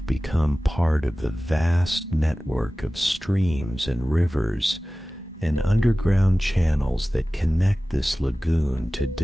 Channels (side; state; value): both; normal; correlation 0.97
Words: become part of the vast network of streams and rivers and underground channels that connect this lagoon to